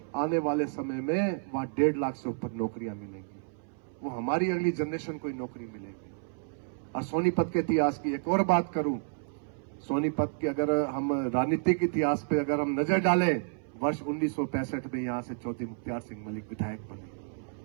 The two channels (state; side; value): silent; left; 57 dB below the other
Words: आने वाले समय में वहां 1.5 लाख से ऊपर नौकरियां मिलेंगी। वो हमारी अगली जनरेशन को ही नौकरी मिलेगी। और सोनीपत के इतिहास की एक और बात करूं, सोनीपत के अगर हम राजनीतिक इतिहास पे अगर हम नजर डालें, वर्ष 1965 में यहां से चौधरी मुख्तार सिंह मलिक विधायक बने।